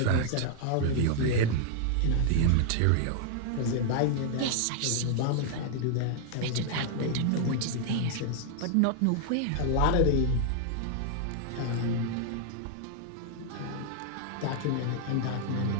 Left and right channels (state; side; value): different; both; correlation 0.00